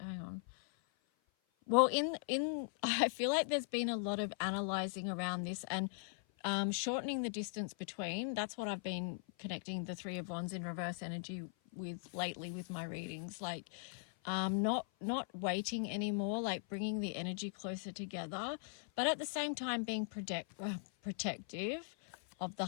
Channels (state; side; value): silent; right; 51 dB below the other